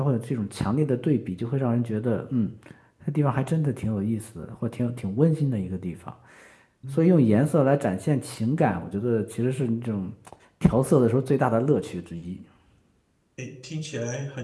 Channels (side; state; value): both; identical; correlation 1.00